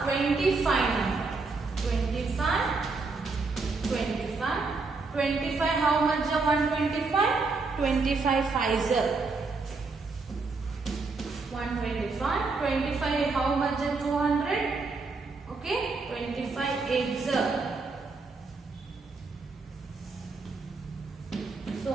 25 number. 25, 25. 25, how much is 125? 25 5s. 125. 25, how much is 200? Okay, 25 8s. So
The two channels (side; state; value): left; quieter; 4.0 dB